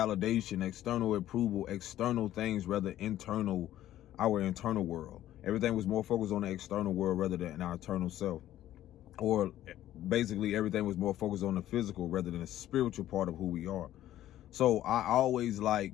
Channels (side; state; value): right; quieter; 13.1 dB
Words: external approval, external things, rather internal, our internal world. Everything was more focused on the external world rather than our internal self. Or basically everything was more focused on the physical rather than the spiritual part of who we are. So I always